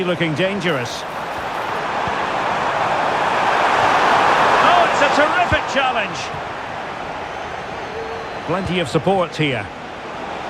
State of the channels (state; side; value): identical; both; correlation 1.00